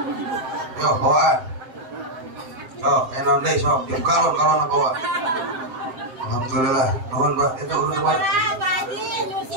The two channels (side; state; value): left; late; 7.7 ms